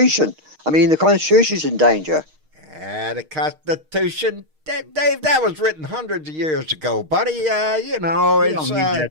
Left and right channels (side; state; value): left; late; 6.4 ms